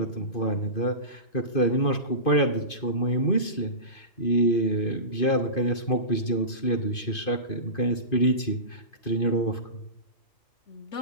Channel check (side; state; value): right; late; 2.5 ms